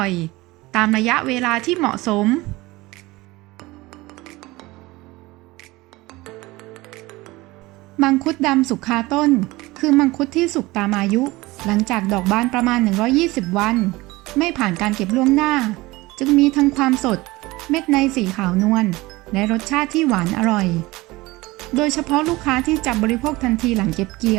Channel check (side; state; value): left; quieter; 20.7 dB